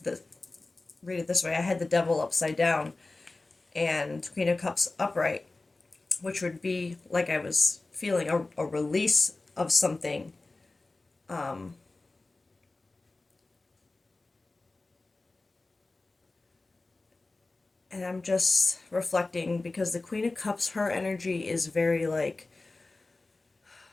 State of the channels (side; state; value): right; quieter; 3.3 dB